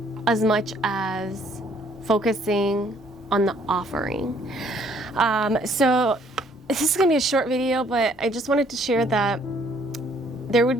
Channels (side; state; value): both; normal; correlation 0.63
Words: as much as focusing on the offering. So this is going to be a short video, but I just wanted to share that there would